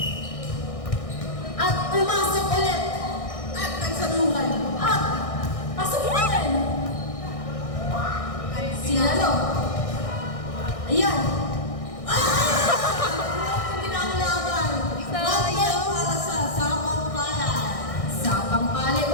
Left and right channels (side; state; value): right; late; 1.6 ms